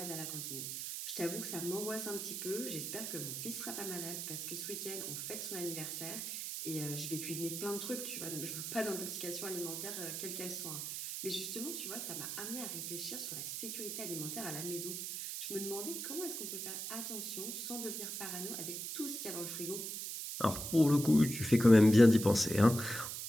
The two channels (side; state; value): right; noise; hiss, 5 dB below the sound